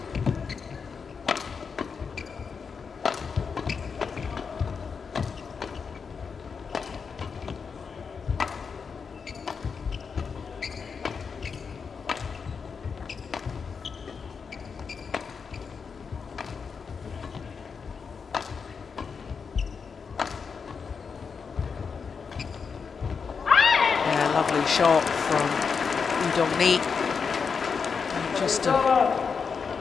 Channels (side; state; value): right; quieter; 5.7 dB